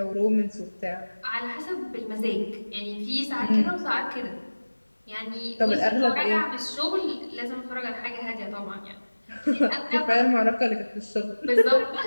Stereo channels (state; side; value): inverted; both; correlation -1.00